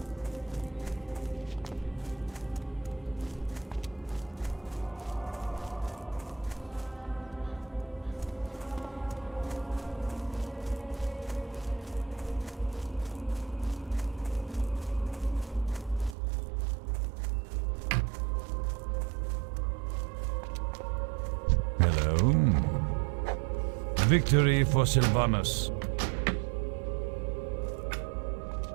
Hello. Victory for Sylvanus.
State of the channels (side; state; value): left; drops out; at 16.2 s